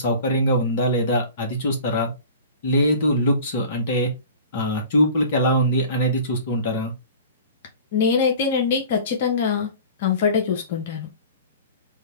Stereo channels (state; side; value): inverted; both; correlation -0.41